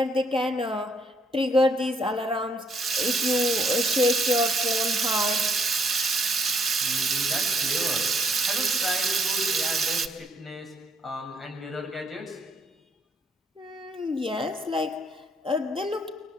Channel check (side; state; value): both; normal; correlation 0.70